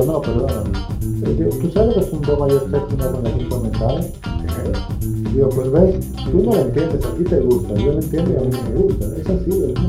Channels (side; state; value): both; identical; correlation 1.00